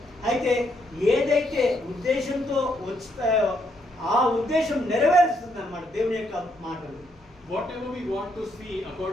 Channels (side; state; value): both; normal; correlation 0.75